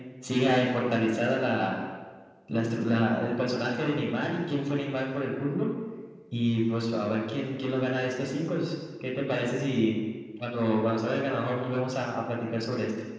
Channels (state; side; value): identical; both; correlation 1.00